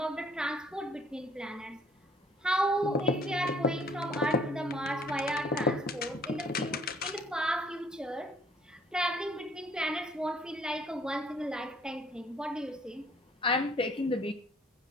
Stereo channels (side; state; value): both; normal; correlation 0.60